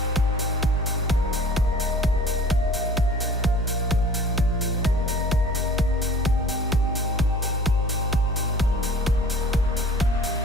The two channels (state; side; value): normal; both; correlation 0.46